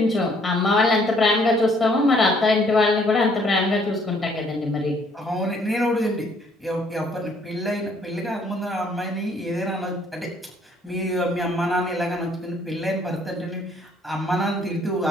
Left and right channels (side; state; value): both; normal; correlation 0.64